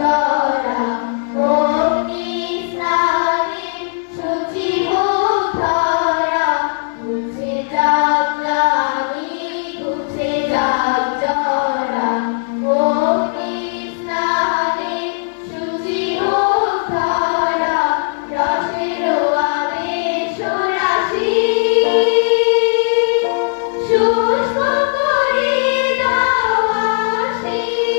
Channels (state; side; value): silent; right; 68 dB below the other